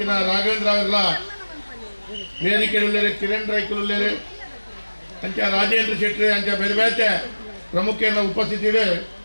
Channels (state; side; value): inverted; both; correlation -1.00